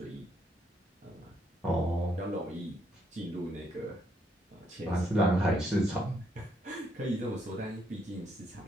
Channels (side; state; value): both; normal; correlation 0.74